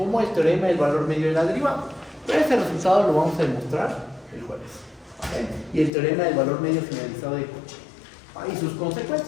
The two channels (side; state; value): right; drops out; at 5.9 s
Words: el teorema del valor medio de la derivada. Pero ese resultado lo vamos a demostrar el jueves. Y el teorema del valor medio generalizado de Cauchy. Y sus